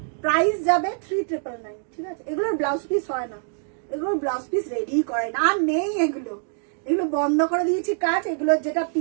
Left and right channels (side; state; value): left; silent; digital silence